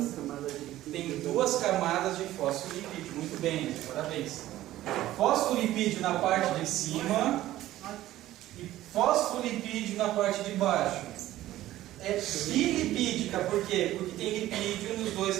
camadas de... Tem duas camadas de fosfolipídio. Muito bem, parabéns. Fosfolipídio na parte de cima e fosfolipídio na parte de baixo. É bilipídica, por quê? Porque tem lipídio nos dois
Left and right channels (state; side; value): quieter; left; 14.7 dB